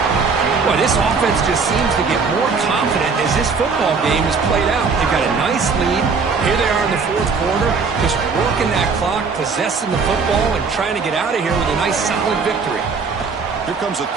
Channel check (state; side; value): quieter; left; 5.0 dB